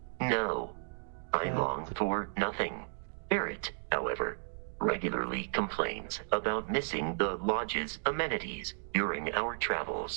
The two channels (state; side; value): silent; left; digital silence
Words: no. I long for nothing. Barrett, however, regularly complains about missing the lodge's amenities during our